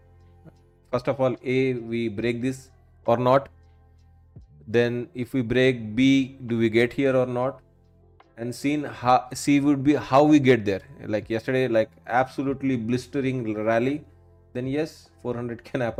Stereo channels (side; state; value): both; identical; correlation 1.00